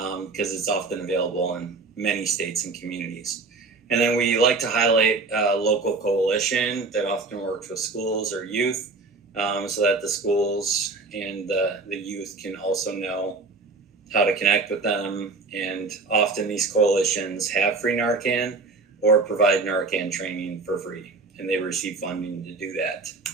it's often available in many states and communities. And then we like to highlight a local coalition that often works with schools or youth so that the schools and the youth can also know how to connect with them. And often these coalitions have free Narcan or provide Narcan training for free, and they receive funding to do that.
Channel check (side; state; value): left; quieter; 3.9 dB